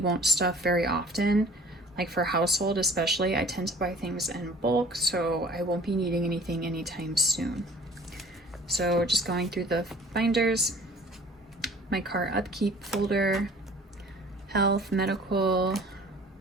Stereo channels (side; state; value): both; normal; correlation 0.49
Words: stuff very often. Like for household especially, I tend to buy things in bulk, so I won't be needing anything anytime soon. So just going through the binders, my car upkeep folder, health, medical,